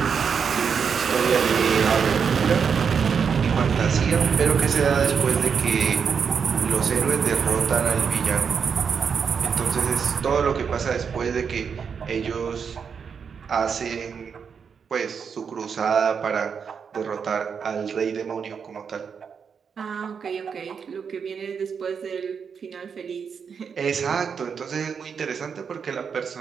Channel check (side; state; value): left; quieter; 6.5 dB